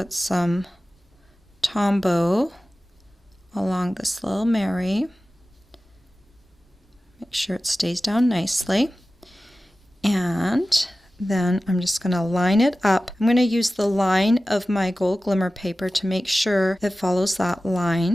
some Tombow along this little Mary. Make sure it stays down nicely. And then I'm just going to line it up. I'm going to use the line of my gold glimmer paper to make sure it follows that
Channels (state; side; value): normal; both; correlation 0.96